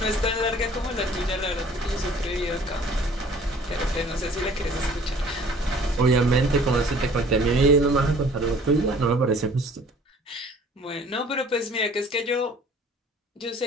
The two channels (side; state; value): both; normal; correlation 0.52